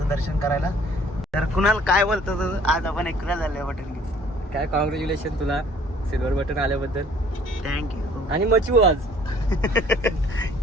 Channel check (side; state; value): both; normal; correlation 0.56